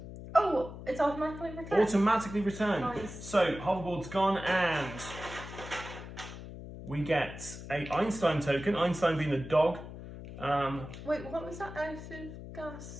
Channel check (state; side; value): noise; left; hum, 12 dB below the sound